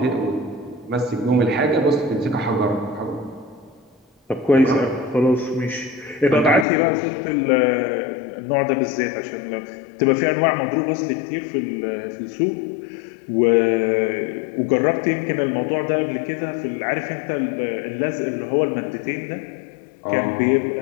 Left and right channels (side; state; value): right; drops out; at 6.7 s